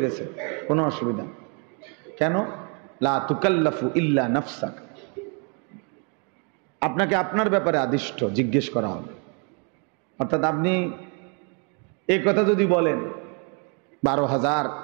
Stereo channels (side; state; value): left; quieter; 37.3 dB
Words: গেছে, কোনো অসুবিধা। কেন? লা তুকাল্লাফু ইল্লা নাফসাক, আপনাকে আপনার ব্যাপারে আদিষ্ট জিজ্ঞেস করা হবে। অর্থাৎ আপনি এই কথা যদি বলেন 12,000